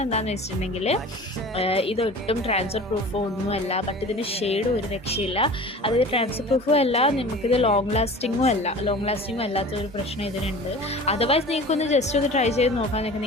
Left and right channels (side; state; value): both; normal; correlation 0.39